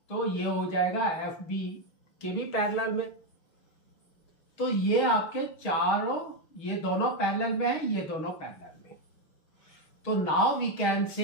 तो ये हो जाएगा FB के भी पैरेलल में। तो ये आपके चारों, ये दोनों पैरेलल में है, ये दोनों पैरेलल में। तो now we can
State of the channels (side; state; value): right; late; 6.3 ms